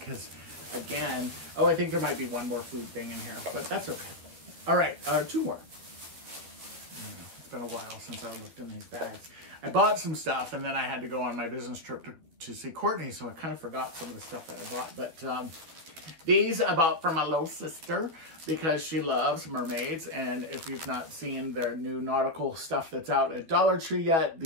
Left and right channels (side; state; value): left; late; 13 ms